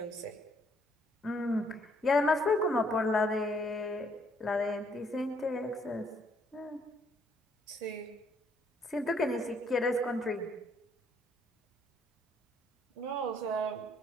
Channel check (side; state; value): both; normal; correlation 0.68